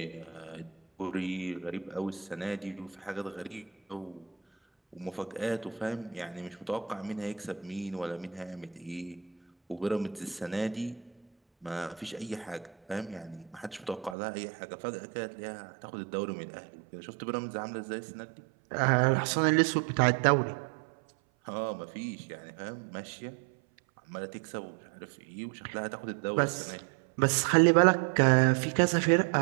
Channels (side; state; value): left; drops out; at 14.2 s